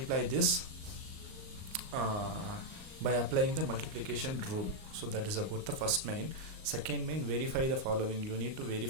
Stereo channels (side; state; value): left; late; 38 ms